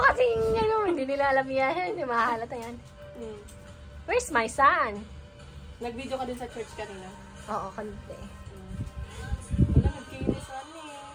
kasi hindi nila alam yan. Hindi mahalata yan. Where's my son? Nag-video ka din sa church kanina. Oo, kanina eh. Wala, nagkinis ano.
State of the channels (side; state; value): both; identical; correlation 1.00